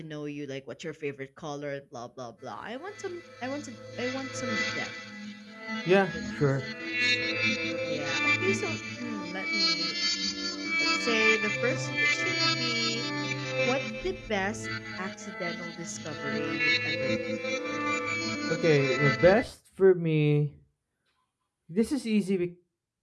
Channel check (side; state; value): both; identical; correlation 1.00